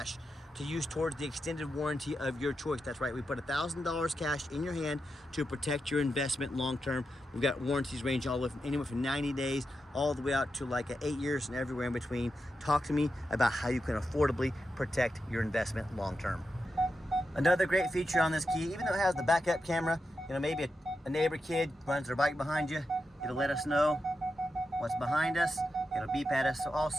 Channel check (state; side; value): normal; both; correlation 0.88